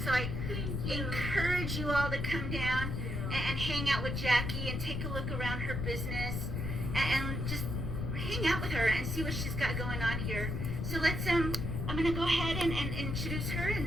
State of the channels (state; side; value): noise; left; rumble, 2 dB below the sound